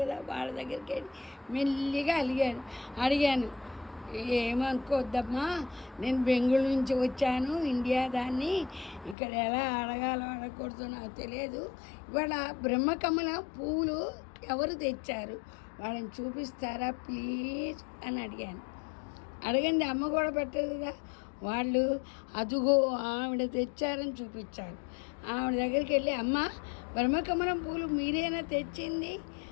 కదా, వాళ్ళ దగ్గరికి వెళ్ళి మెల్లిగా అడిగాను. ఏమనుకోవద్దమ్మా, నేను బెంగళూరు నుంచి వచ్చాను, ఇండియా దాన్ని, ఇక్కడ ఎలా అడగాలో అడగకూడదు నాకు తెలియదు. ఇవాళ బ్రహ్మకమల పువ్వులు ఎవరు తెచ్చారు, వాళ్ళని చూపిస్తారా ప్లీజ్ అని అడిగాను. అడగండి, అమ్మ కూడా పెట్టదు కదా. వాళ్ళు అదుగో ఆవిడ తెచ్చారని చూపించారు. ఆవిడ దగ్గరికి వెళ్ళి, అమ్మ బ్రహ్మకమలం పూలు మీరేనా తెచ్చింది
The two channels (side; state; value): right; drops out; at 9.2 s